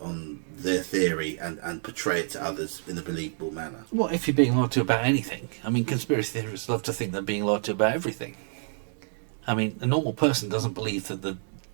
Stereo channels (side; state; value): left; silent; 59 dB below the other